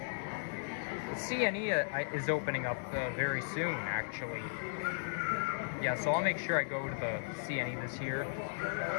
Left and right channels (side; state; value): right; silent; 54 dB below the other